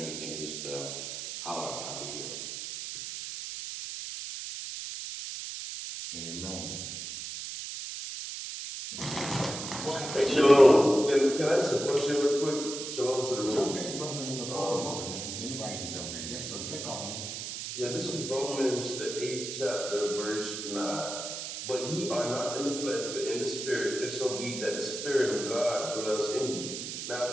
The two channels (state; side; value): noise; right; hiss, 6 dB below the sound